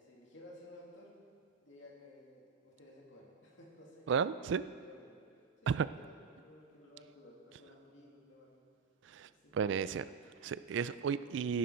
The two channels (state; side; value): quieter; left; 6.0 dB